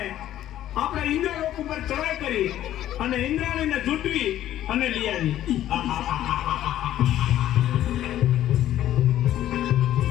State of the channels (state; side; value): quieter; right; 12.6 dB